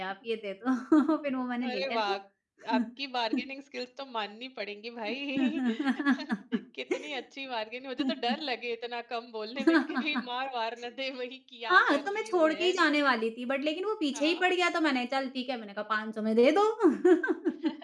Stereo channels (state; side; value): identical; both; correlation 1.00